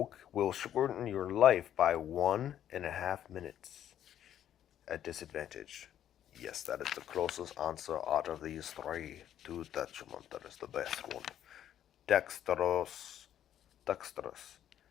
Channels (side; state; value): right; quieter; 10.7 dB